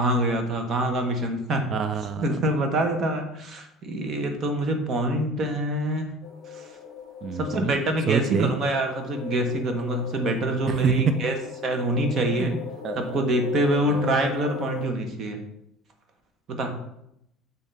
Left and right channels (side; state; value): both; normal; correlation 0.43